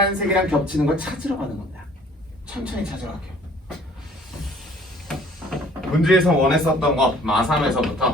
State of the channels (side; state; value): both; normal; correlation 0.55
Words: 겹치는 걸 찾으러 가는 겁니다. 천천히 찾으러 갈게요. 문제에서 원했었던 거